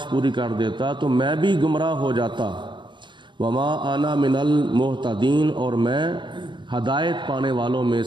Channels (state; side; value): late; left; 0.23 ms